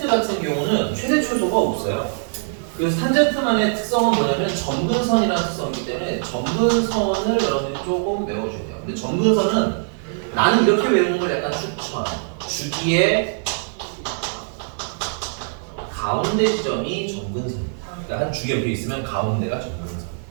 같은 경우는 최대 최소가 없어요. 그래서 탄젠트만의 특성은 뭐냐면 점근선이라는 특성이기 때문에 점근선을 여러분들이 조금 외워줘야 돼요. 근데 점근선은 나는 이렇게 외우는 걸 약간 추천. 주기의 가운데 지점이 점근선입니다. 그러니까 한 주기 옆에 있으면 가운데가 점근선.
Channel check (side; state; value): left; silent; digital silence